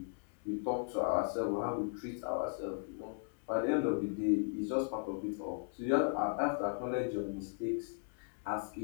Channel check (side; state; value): right; silent; digital silence